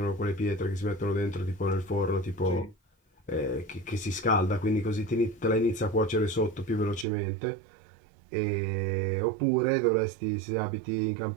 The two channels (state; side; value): drops out; left; at 7.1 s